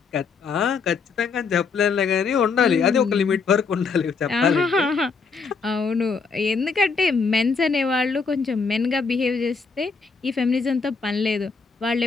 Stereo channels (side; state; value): right; quieter; 5.0 dB